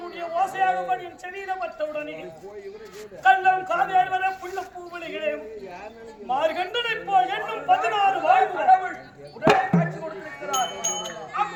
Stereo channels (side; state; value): both; identical; correlation 1.00